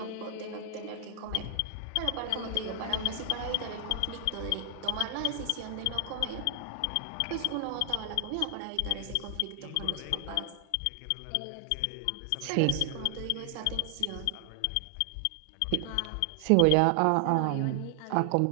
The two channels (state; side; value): different; both; correlation 0.00